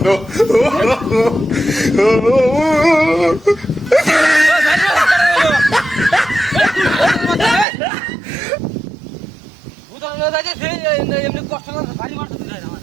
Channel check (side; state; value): left; drops out; at 7.7 s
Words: এমনি কষ্ট করে ভারী মারতে দিলে